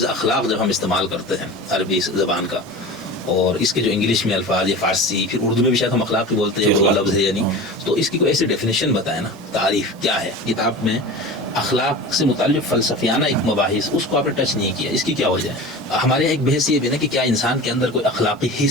اخلاق جب ہم استعمال کرتے ہیں عربی زبان کا، اور اس کے جو انگلش میں الفاظ یا فارسی، پھر اردو میں بھی شاید ہم اخلاق ہی بولتے ہیں وہ لفظ ہے یا نہیں، تو اس کی کوئی ایسی ڈیفینیشن بتائیں نا، تعریف کیا ہے کتاب میں اخلاق سے متعلق فلسفیانہ ایک مباحث، اس کو آپ نے ٹچ نہیں کیا، اس کی کیا وجہ ہے؟ ہمارے ایک بحث یہ بھی نا کہ کیا انسان کے اندر کوئی اخلاقی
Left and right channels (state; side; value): normal; both; correlation 0.33